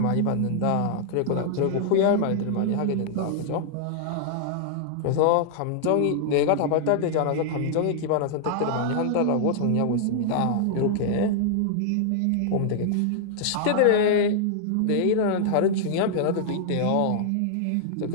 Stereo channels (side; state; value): both; different; correlation -0.01